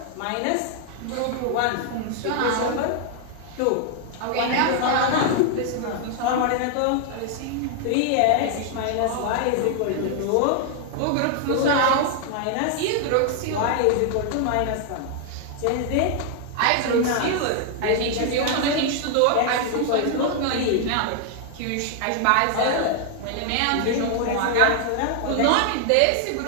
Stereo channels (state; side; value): different; both; correlation 0.00